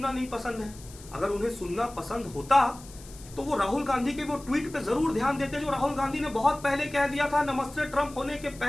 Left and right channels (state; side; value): noise; left; hiss, 19 dB below the sound